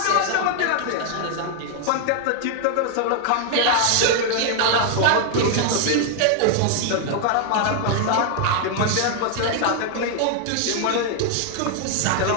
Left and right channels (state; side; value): different; both; correlation 0.00